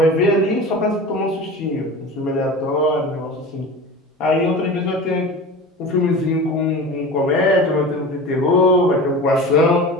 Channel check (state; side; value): normal; both; correlation 0.33